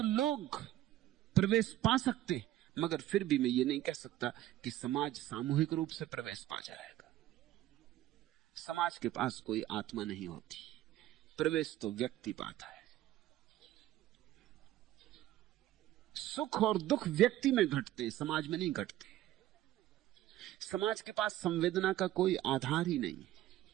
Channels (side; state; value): left; quieter; 14.2 dB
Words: प्रवेश पा सकते, मगर फिर भी मैं ये नहीं कह सकता कि समाज सामूहिक रूप से प्रवेश पा जाएगा। समाज के पास कोई आत्मा नहीं होती, प्रवेश तो व्यक्ति पाता है। सुख और दुख व्यक्ति में घटते, समाज में नहीं घटते। समाज के पास संवेदना का कोई आधार ही नहीं है।